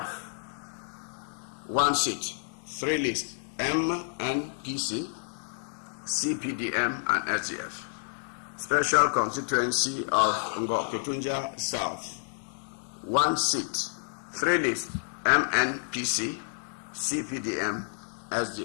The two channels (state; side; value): silent; right; digital silence